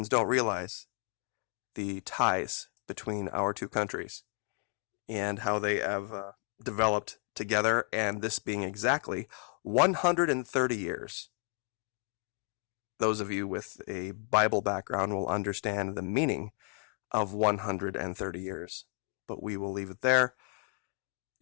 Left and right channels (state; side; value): quieter; right; 39.1 dB